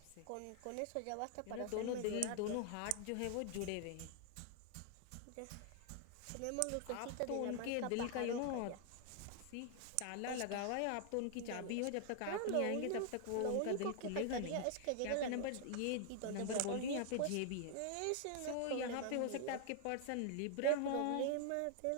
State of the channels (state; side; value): different; both; correlation 0.00